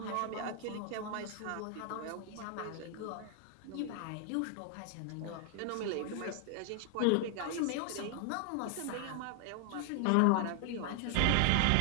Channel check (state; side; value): different; both; correlation 0.00